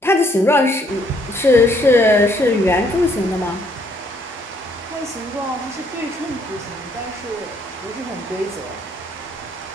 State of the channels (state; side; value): normal; both; correlation 0.67